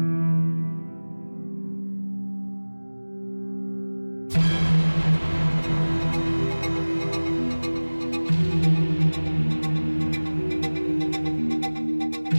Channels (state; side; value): inverted; both; correlation -1.00